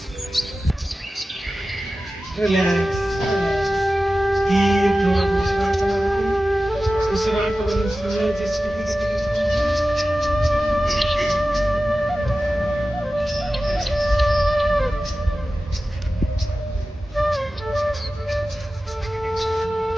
ರಿಲ್ಯಾಕ್ಸ್. ಉಸಿರಾಟವನ್ನು ಸಂಯೋಜಿಸಿ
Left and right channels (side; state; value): both; normal; correlation 0.95